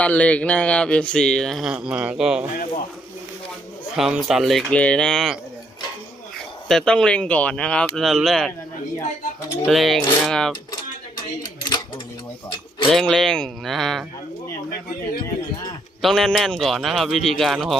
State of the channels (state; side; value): normal; both; correlation 0.72